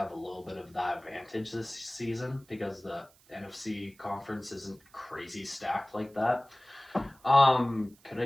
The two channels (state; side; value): noise; right; hiss, 28 dB below the sound